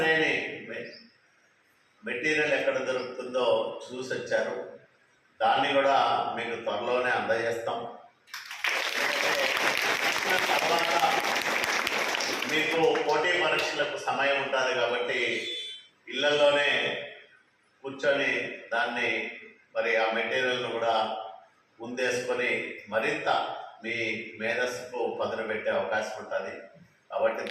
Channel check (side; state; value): both; identical; correlation 1.00